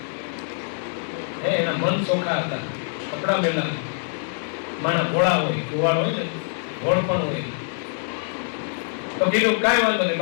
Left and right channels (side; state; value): right; silent; digital silence